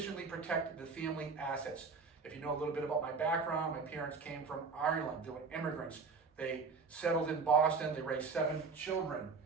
protected the family assets. If you know a little bit about my background, my parents came from Ireland. They were immigrants. They settled in Boston. They raised 7 children,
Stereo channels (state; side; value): quieter; left; 4.8 dB